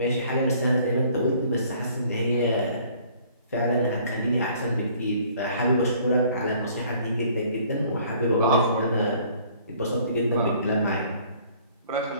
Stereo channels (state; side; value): inverted; both; correlation -0.57